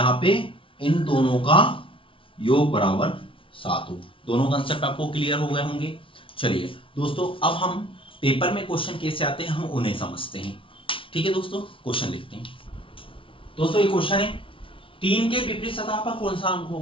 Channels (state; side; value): late; right; 0.25 ms